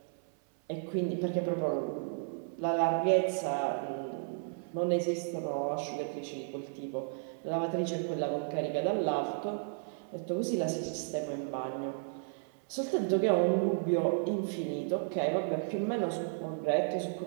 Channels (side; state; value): left; silent; 56 dB below the other